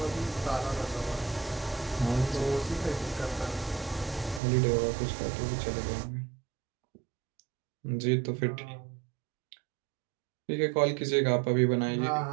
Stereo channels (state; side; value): drops out; left; at 4.4 s